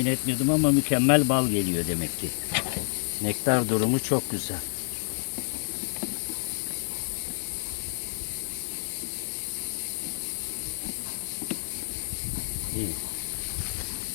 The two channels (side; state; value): right; silent; digital silence